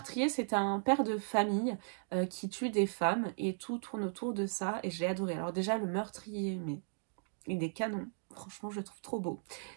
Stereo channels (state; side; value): silent; left; digital silence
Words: c'est un père de famille qui tue des femmes et tout tourne autour de ça et j'ai adoré. Alors déjà le meurtrier, mais il est canon. Franchement, je le trouve trop beau.